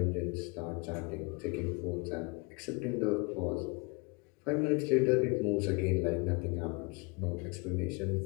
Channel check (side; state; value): right; quieter; 29.2 dB